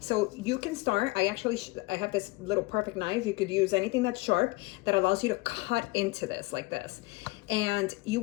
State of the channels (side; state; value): right; quieter; 23.2 dB